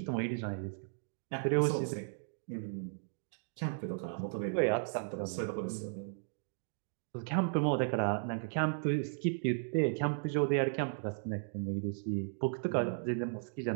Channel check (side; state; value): left; silent; digital silence